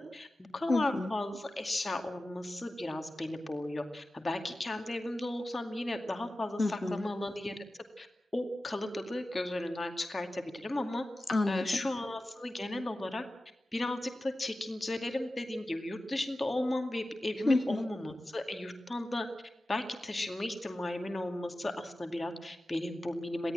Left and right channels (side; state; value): both; normal; correlation 0.94